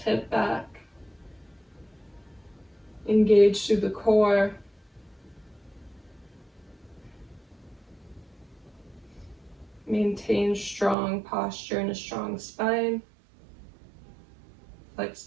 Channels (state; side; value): drops out; left; at 11.0 s